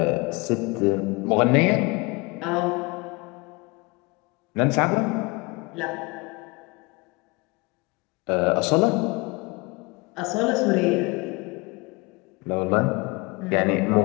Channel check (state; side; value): quieter; right; 26.6 dB